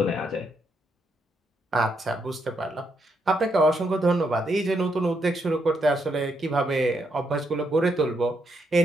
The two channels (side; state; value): both; normal; correlation 0.78